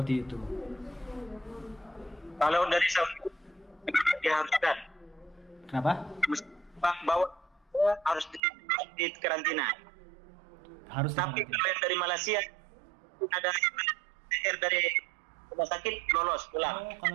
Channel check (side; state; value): left; drops out; at 8.4 s